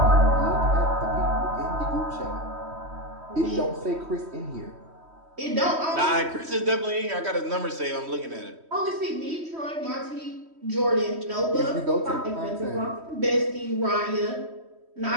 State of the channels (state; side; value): late; left; 3.1 ms